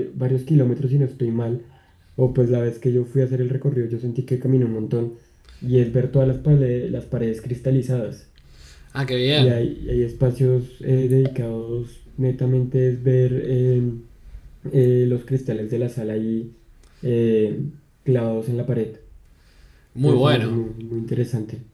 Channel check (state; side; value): identical; both; correlation 1.00